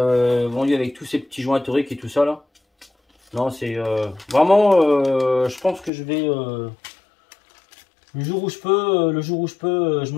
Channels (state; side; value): drops out; right; at 5.9 s